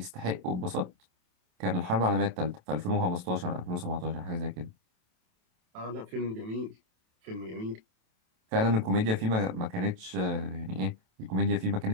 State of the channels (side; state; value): left; late; 27 ms